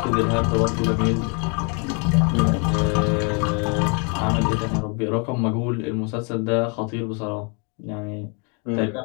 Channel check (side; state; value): right; quieter; 35.8 dB